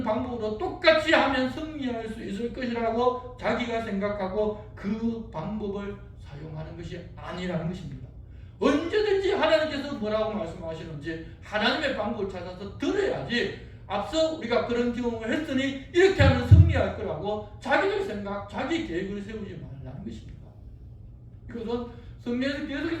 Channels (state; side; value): identical; both; correlation 1.00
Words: 방법으로 똑같이 하면 승리할 수 있을 것이라고 자기가 생각하고 그 방법을 사용하는 것이 아니라는 것입니다. 언제든지 하나님께서 뭐라고 말씀하시는지 하나님의 방법을 찾아서 들어야지 앞서 우리가 그런 경험을 했으니 이렇게 하면 승리할 거라고 자기들 생각, 자기 계획을 세우지 말라는 것입니다. 이것은 성경에서